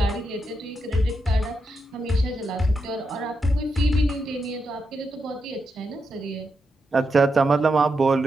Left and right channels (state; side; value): normal; both; correlation 0.85